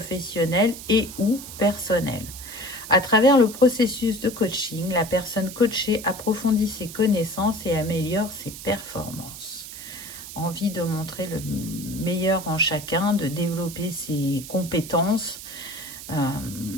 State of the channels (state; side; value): noise; right; hiss, 12 dB below the sound